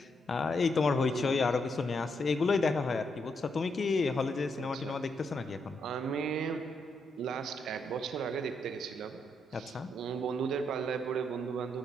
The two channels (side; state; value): both; normal; correlation 0.79